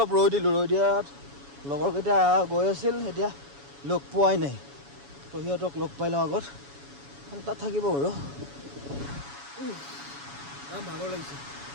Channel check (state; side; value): late; left; 7.1 ms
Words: ৰৈ দিয়াত লগৰকেইটা গৈ আছিল এতিয়া লগ পোৱাই নাই তো সিহঁতক লগ পাই লওঁ আগত তাত থাকিব বাৰু ভাগৰ লাগিছে